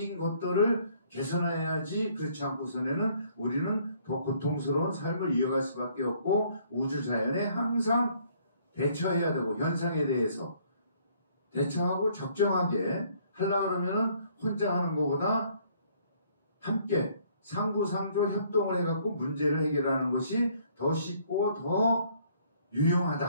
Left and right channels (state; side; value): inverted; both; correlation -0.63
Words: 것들을 개선해야지 그렇지 않고서는 우리는 더 고통스러운 삶을 이어갈 수밖에 없고 우주자연에 항상 대처해야 되고 현상에 대해서 대처하고 적정하게 하려고 그러면은 혼자 하는 것보다 함께 상부상조 협동을 해갖고 문제를 해결하는 것이 더 쉽고 더